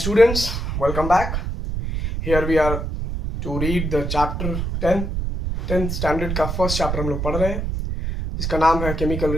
Welcome back. Here we are to read the chapter 10th standard का फर्स्ट चैप्टर हम लोग पढ़ रहे हैं जिसका नाम है केमिकल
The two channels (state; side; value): noise; right; rumble, 3 dB below the sound